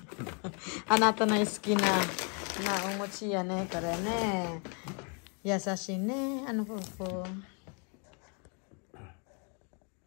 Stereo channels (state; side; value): quieter; right; 37.4 dB